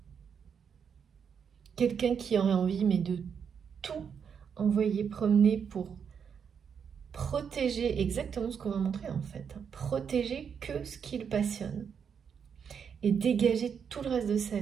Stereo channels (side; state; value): left; quieter; 7.1 dB